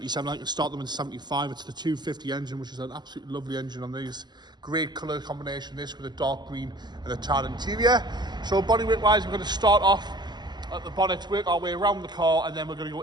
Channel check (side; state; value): left; late; 0.21 ms